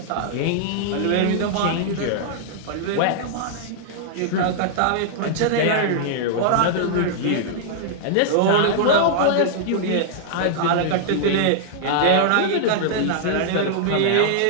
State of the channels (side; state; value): both; different; correlation -0.01